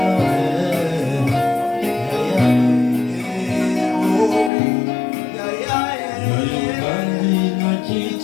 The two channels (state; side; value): drops out; right; at 4.5 s